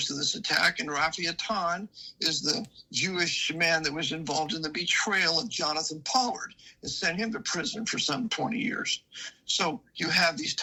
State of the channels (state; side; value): identical; both; correlation 1.00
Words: of this attack. And Rafi Athan is the Jewish man that was involved in the betrayal of Jonathan Pollard and sent him to prison for some 20 years. So you have these